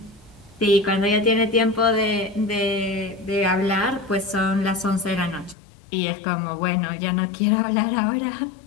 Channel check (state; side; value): drops out; right; at 5.6 s